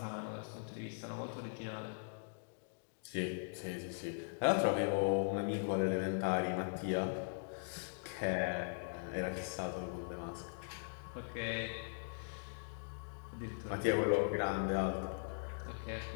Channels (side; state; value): right; silent; digital silence